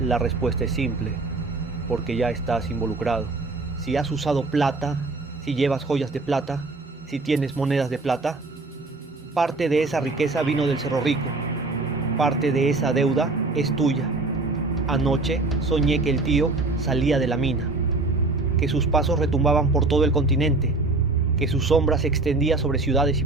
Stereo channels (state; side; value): quieter; left; 3.4 dB